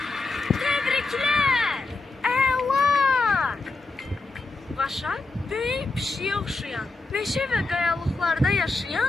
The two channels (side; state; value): right; quieter; 3.5 dB